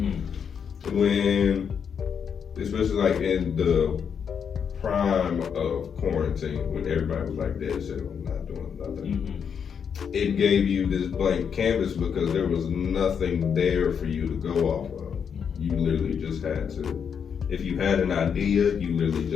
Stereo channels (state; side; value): quieter; right; 7.1 dB